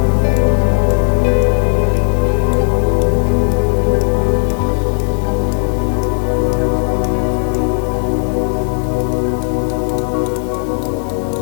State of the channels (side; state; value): right; silent; digital silence